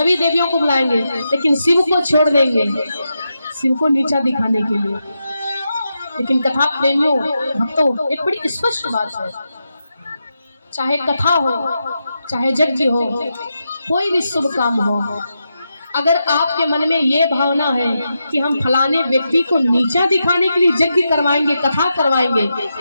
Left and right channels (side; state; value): both; inverted; correlation -0.87